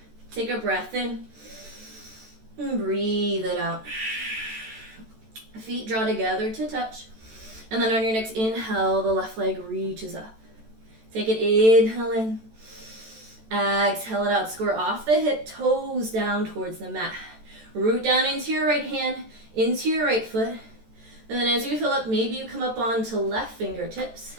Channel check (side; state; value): left; late; 14 ms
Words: Take a breath in. And breathe it out. Feet draw together to touch. And then on your next inhale, the left leg reaches up. Take it, inhale in. Exhale it out. Square off the hip, toes down towards the mat. Root down into your right hand, into your right foot. And then as you fill up, maybe you come up onto left fingertips.